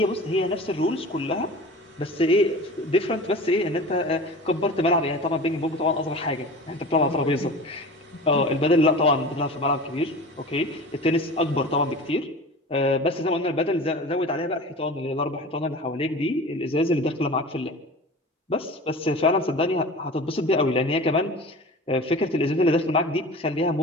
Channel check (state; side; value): normal; both; correlation 0.36